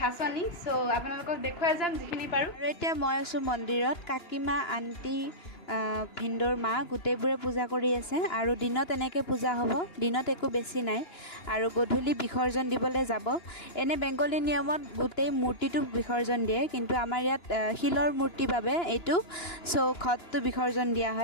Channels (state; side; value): late; right; 2.9 ms